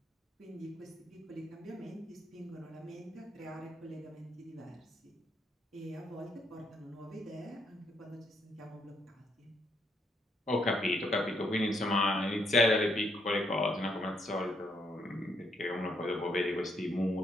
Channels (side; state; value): both; normal; correlation 0.74